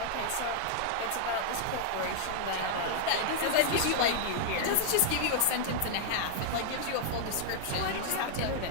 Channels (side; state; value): both; different; correlation 0.00